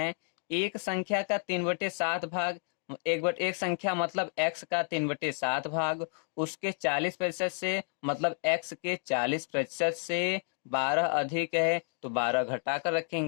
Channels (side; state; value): right; silent; 57 dB below the other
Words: एक संख्या का 3/7 भाग, एक संख्या मतलब x का 3/7 भाग, उसके 40% से मतलब x के 40% से 12 अधिक है तो 12 घटा कर